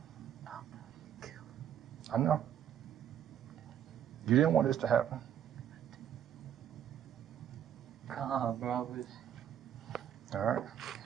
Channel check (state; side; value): quieter; left; 9.8 dB